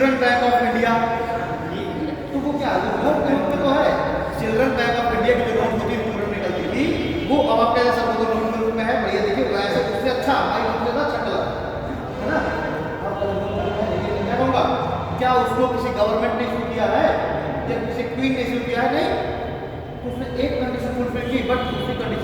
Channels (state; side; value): identical; both; correlation 1.00